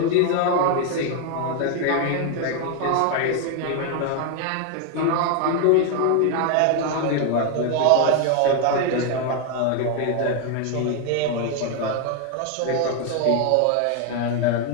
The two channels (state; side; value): different; both; correlation 0.01